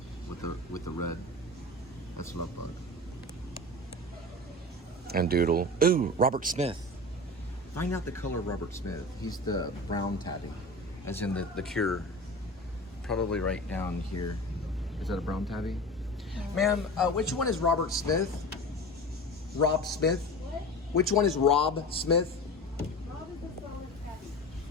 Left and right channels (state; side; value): normal; both; correlation 0.32